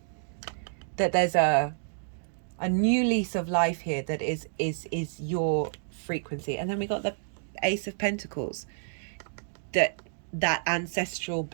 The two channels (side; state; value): left; silent; digital silence